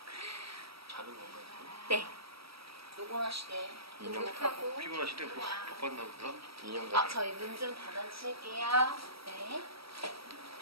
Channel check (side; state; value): left; late; 0.76 ms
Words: 자는 건가요? 네. 노곤하시대. 하고. 피곤하시대? 뭐 바빴나 보다. 인형 아, 같아. 저희 문 좀 닫아주실게요. 네.